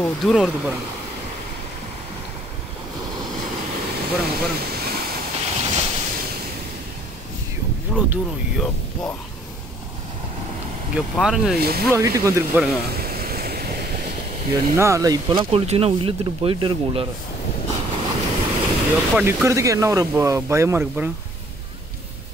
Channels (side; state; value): both; normal; correlation 0.60